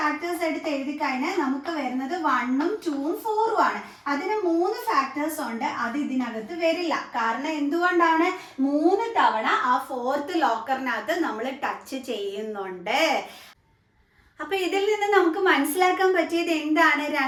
എടുത്ത് എഴുതി കഴിഞ്ഞാൽ നമുക്ക് വരുന്നത് 1ഉം 2ഉം 4ഉം ആണ്. അതിന് 3 ഫാക്ടേഴ്സ് ഉണ്ട്, അത് ഇതിനകത്ത് വരില്ല. കാരണം എന്തുകൊണ്ടാണ്? 3 തവണ ആ 4th ലോക്കറിനകത്ത് നമ്മൾ ടച്ച് ചെയ്യുന്നുണ്ട്. അപ്പൊ ഇതിൽ നിന്ന് നമുക്ക് മനസ്സിലാക്കാൻ പറ്റിയത് എന്താണ്?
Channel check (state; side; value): identical; both; correlation 1.00